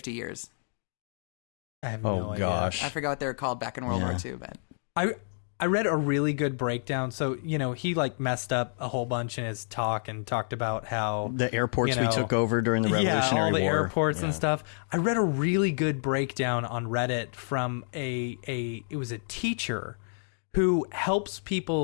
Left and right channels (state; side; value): silent; right; digital silence